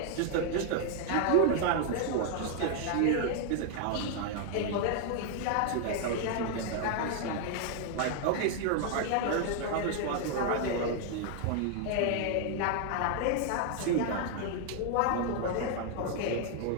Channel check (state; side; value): different; both; correlation 0.00